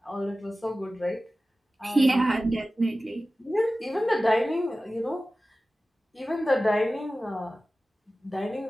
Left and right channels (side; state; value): both; normal; correlation 0.96